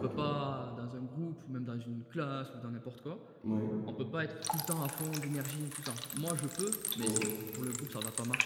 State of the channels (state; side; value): identical; both; correlation 1.00